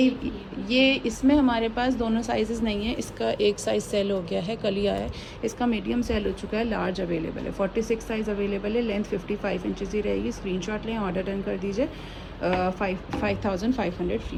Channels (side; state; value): both; identical; correlation 1.00